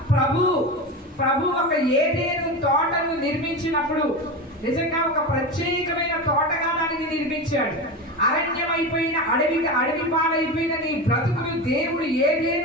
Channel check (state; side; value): normal; both; correlation 0.23